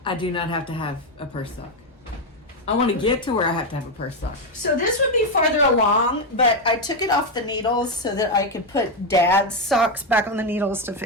I do not have to have a purse sock. I want to get to where I have to have a purse sock. So this would be farther along, but I took it off the needles so that I could put Dad's socks back on the needles to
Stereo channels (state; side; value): normal; both; correlation 0.06